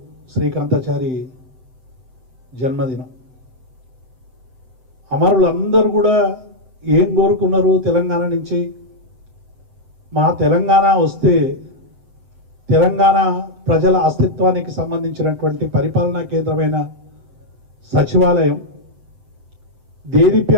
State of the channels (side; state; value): left; late; 7.8 ms